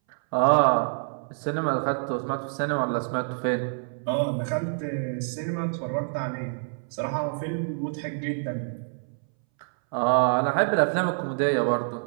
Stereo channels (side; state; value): left; silent; 60 dB below the other